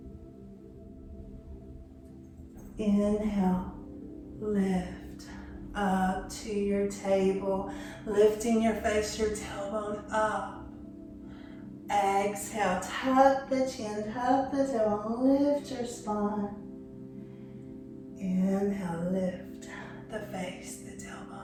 Inhale, lift up to your table, lifting your face, your tailbone up. Exhale, tuck the chin, tuck the tailbone, lift your spine. Inhale, lift the face, the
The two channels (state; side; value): identical; both; correlation 1.00